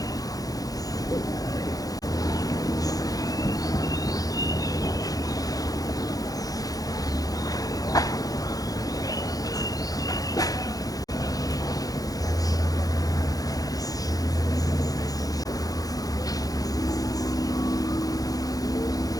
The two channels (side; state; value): right; late; 0.18 ms